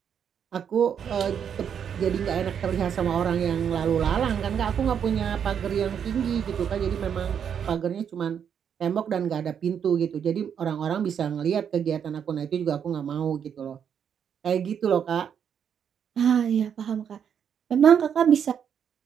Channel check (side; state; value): left; quieter; 8.0 dB